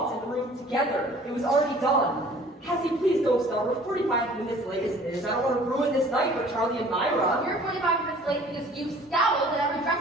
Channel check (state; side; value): normal; both; correlation 0.51